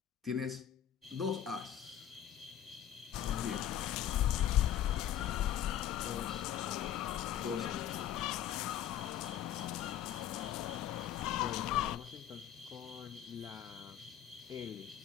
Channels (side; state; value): right; quieter; 10.8 dB